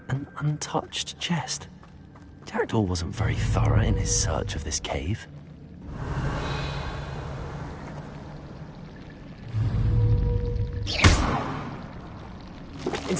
An untouched chest. Jackdaw wasn't very thorough in his search of this cave.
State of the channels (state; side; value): identical; both; correlation 1.00